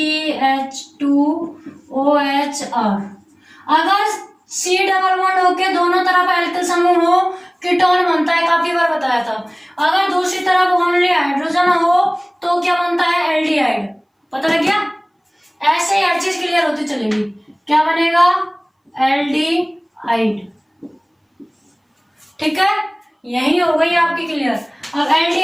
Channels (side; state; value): both; identical; correlation 1.00